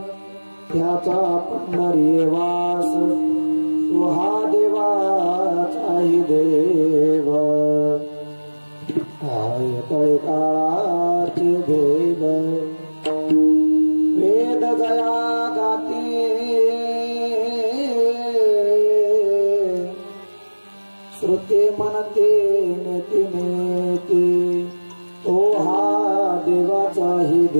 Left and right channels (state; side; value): inverted; both; correlation -1.00